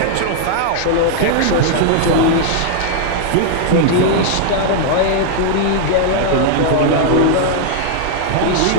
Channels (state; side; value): different; both; correlation -0.01